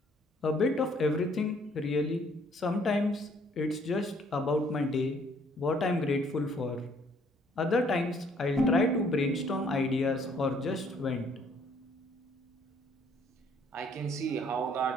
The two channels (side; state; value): both; normal; correlation 0.63